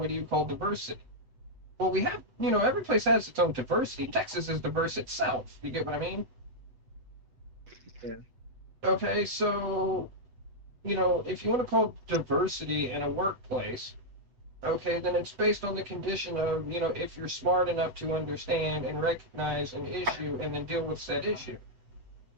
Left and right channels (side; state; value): left; late; 8.0 ms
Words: do you call diversity? Well, we have, every place has its own diversity. Texas is diverse itself. You get what I mean? Yeah. Okay, so, if you want to call diversity in a workplace, okay, then it's based on the condition of, if you're smart enough to understand and recognize an issue and then deal with said issue.